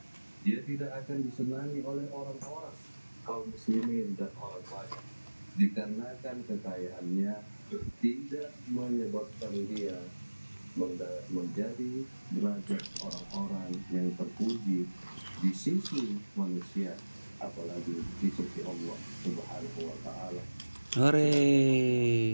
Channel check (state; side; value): inverted; both; correlation -1.00